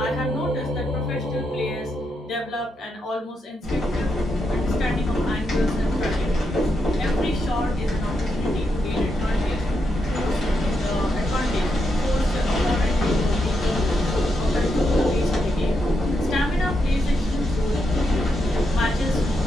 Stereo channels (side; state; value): both; normal; correlation 0.82